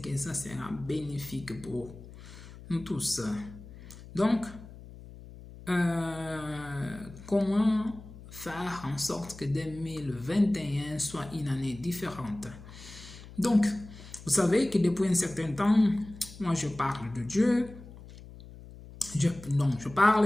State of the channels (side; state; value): left; noise; hum, 17 dB below the sound